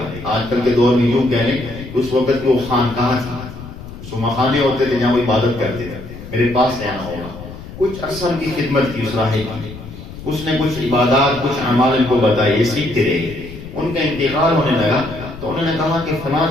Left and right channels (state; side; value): noise; left; rumble, 13 dB below the sound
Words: آج کل کے دور میں یوں کہہ لیں کہ اس وقت کی وہ خانقاہ تھی، اس مخانے ہوتے تھے جہاں وہ عبادت کرتے تھے، میرے پاس رہنا ہوگا۔ کچھ عرصہ کی خدمت کی اس راہب کی، اس نے کچھ عبادات، کچھ اعمال ان کو بتائے، یہ سیکھتے رہے۔ ان کا انتقال ہونے لگا تو انہوں نے کہا کہ فلاں